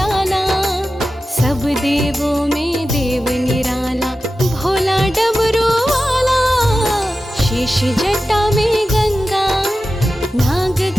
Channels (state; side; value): normal; both; correlation 0.93